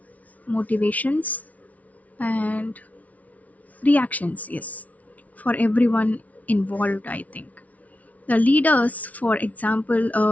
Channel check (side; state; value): right; late; 0.070 ms